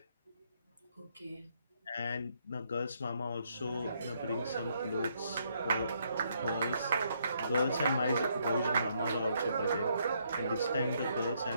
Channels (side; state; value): both; inverted; correlation -0.72